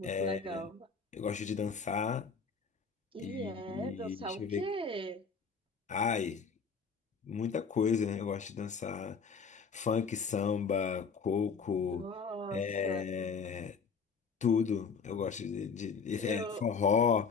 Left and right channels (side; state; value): right; quieter; 5.6 dB